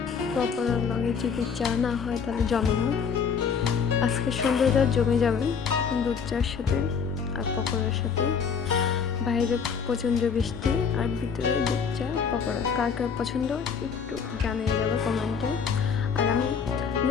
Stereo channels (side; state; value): right; quieter; 6.3 dB